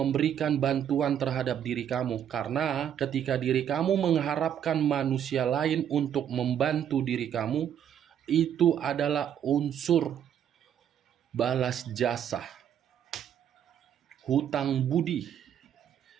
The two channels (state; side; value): quieter; left; 9.4 dB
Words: bantuan terhadap diri kamu, karena ketika diri kamu mengharapkan manusia lain untuk membantu diri kamu, itu adalah unsur balas jasa. Hutang budi.